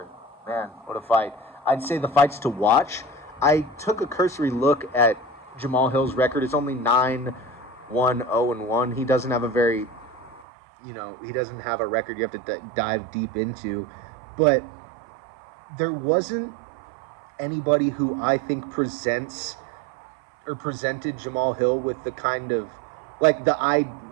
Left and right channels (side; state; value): left; drops out; at 10.5 s